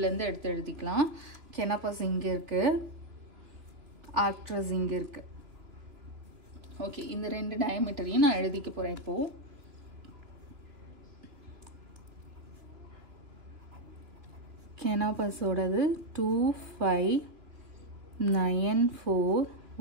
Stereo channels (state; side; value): late; left; 2.9 ms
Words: இருந்து எடுத்து எழுதிக்கலாம். Canopus இங்க இருக்கு, Arcturus இங்க இருக்கு. ஓகே, இந்த 2 டயமீட்டரையும் நான் எழுதிக்க போறேன் இப்போ. Canopus ஓடது